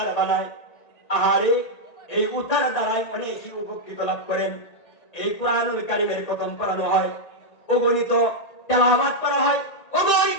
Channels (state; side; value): late; right; 1.8 ms